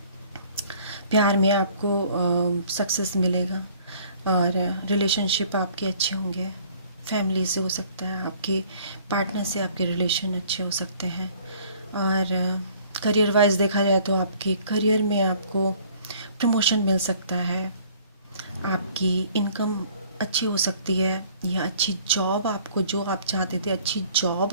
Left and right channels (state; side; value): inverted; both; correlation -0.55